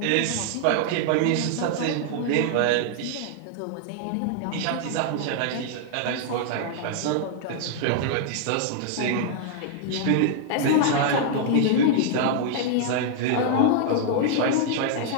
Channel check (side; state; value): both; different; correlation -0.01